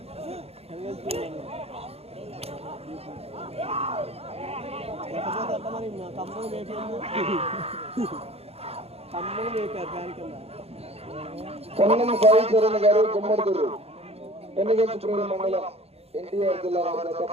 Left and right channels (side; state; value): left; late; 0.29 ms